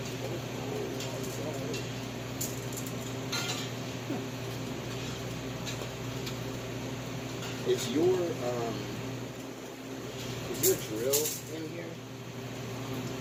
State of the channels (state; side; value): identical; both; correlation 1.00